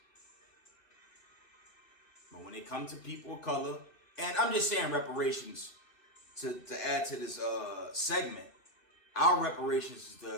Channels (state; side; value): late; right; 1.8 ms